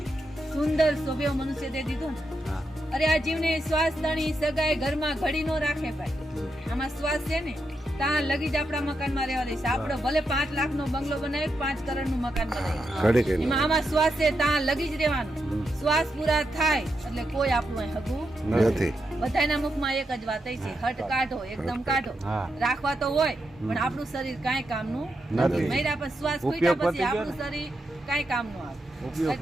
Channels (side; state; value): both; normal; correlation 0.84